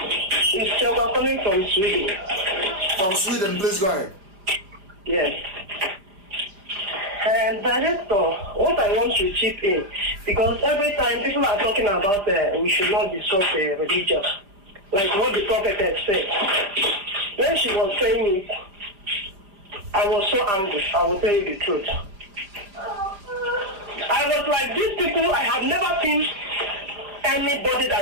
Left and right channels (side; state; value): left; late; 5.0 ms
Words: It's Selma calling from Sweden. From Sweden, please go ahead. Yes. And Director, what I want to chip in, because every time people are talking about we should not discuss religion, like what the prophetess said. When she was saying it, I was so angry. I will tell you the truth. I was like, these people, I have never seen anybody